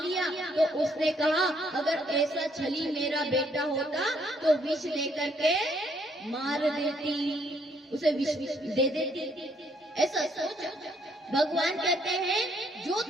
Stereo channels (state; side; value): normal; both; correlation 0.69